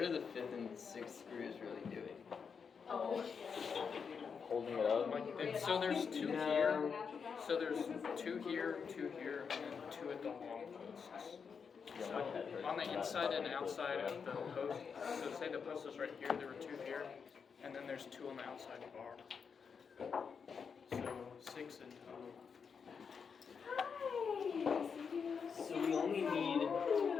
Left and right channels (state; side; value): quieter; right; 6.1 dB